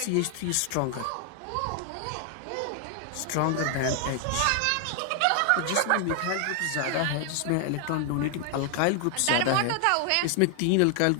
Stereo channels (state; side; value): different; both; correlation 0.00